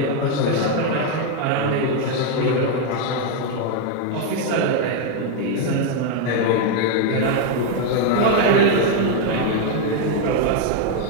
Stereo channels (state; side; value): different; both; correlation 0.01